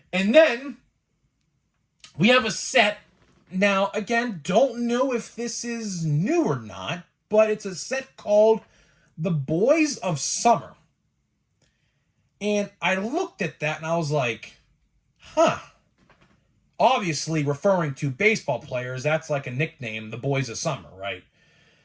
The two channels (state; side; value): identical; both; correlation 1.00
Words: And then we have a set. Now, again, don't know if this is new or not, but it's a set called The Boys of Summer. And I looked at that and I was like, obviously referring to baseball players, that's like a nickname, The Boys of Summer, right?